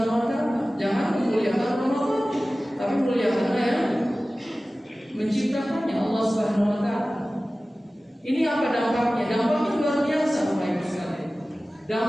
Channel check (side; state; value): both; normal; correlation 0.97